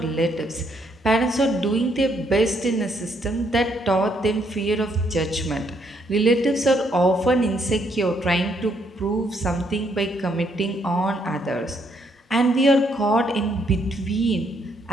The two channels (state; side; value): normal; both; correlation 0.72